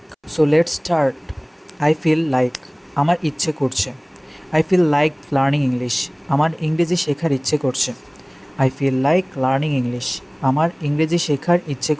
So let's start. I feel like আমার ইচ্ছে করছে। I feel like learning English. আমার ইংরেজি শেখার ইচ্ছে করছে। I feel like learning English. আমার ইংরেজি শেখার ইচ্ছে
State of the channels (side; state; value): both; identical; correlation 1.00